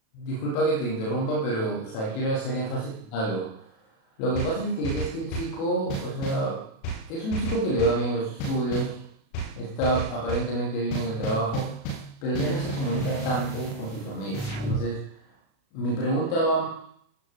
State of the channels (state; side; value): late; right; 36 ms